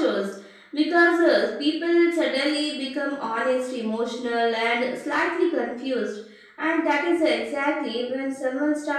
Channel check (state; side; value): identical; both; correlation 1.00